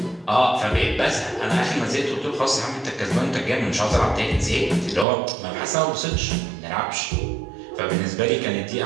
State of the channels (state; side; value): drops out; left; at 5.1 s